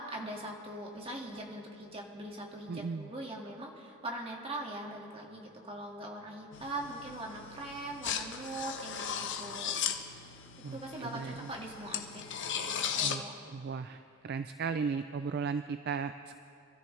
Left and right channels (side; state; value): both; normal; correlation 0.22